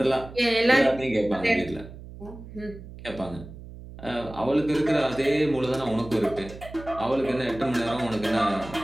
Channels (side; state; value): right; noise; hum, 15 dB below the sound